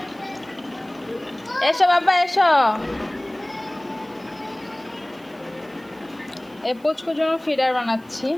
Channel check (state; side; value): noise; right; hiss, 29 dB below the sound